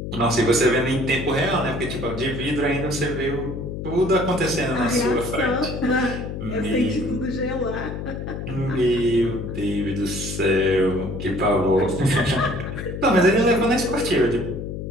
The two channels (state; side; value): noise; left; hum, 6 dB below the sound